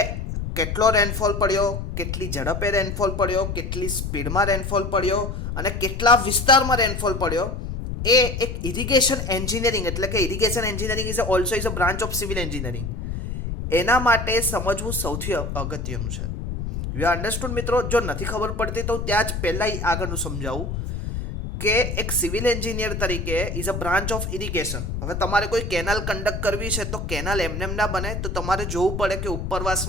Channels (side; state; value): left; noise; rumble, 4 dB below the sound